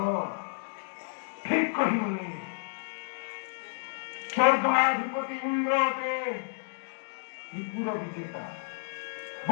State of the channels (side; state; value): right; silent; digital silence